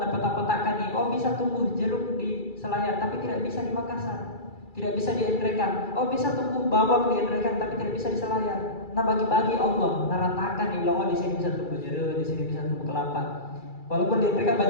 nih, bisa tumbuh jeruk di Selayar tapi tidak bisa di Makassar. Tidak bisa di Endrekan. Bisa tumbuh bawang di Endrekan tapi tidak bisa di Selayar. Nah, bagi-bagi Allah naratakan nih, di sini bisa tumbuh jeruk, di sini bisa tumbuh kelapa. Walaupun di Endrekan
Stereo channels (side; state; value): right; late; 2.3 ms